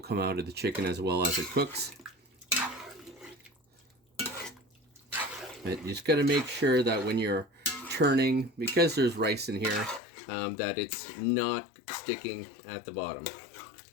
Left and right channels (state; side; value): drops out; right; at 10.0 s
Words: out of the chicken as well as it cooks. But you just got to make sure that when you're turning, because there's rice in here, that it's not sticking at the bottom.